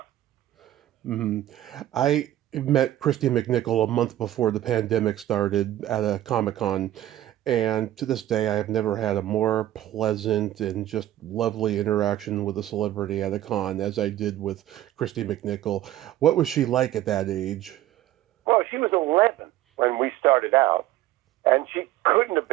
Mm-hmm. I met Christy McNichol a month before the pandemic started at a Comic-Con. And to this day, I have never had a more pleasant and just lovely interaction with a celebrity at a con as I did with Christy McNichol. What was she like at that age? Well, she was 11 when we started out, and she couldn't have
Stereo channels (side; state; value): left; quieter; 13.6 dB